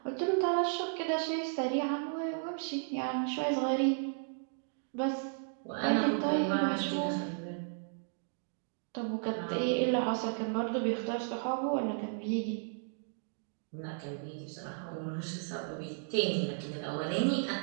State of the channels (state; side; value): silent; left; digital silence